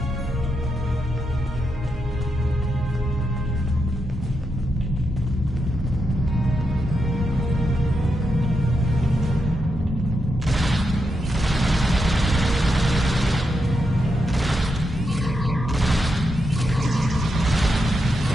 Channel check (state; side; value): normal; both; correlation 0.84